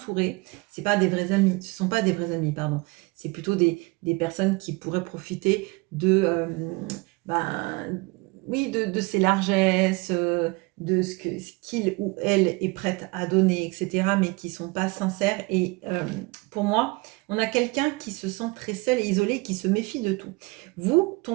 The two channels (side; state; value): left; quieter; 25.5 dB